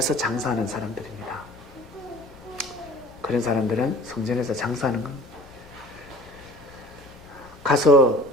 장사하는 사람들입니다. 그런 사람들은 성전에서 장사하는 건 가서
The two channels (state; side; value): noise; left; rumble, 23 dB below the sound